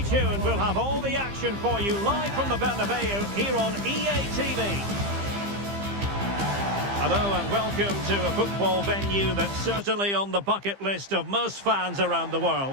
tuned, we'll have all the action for you live from the Bernabeu here on EA TV. Hello and welcome to a football venue that's certainly on the bucket list of most fans around the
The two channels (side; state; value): left; late; 15 ms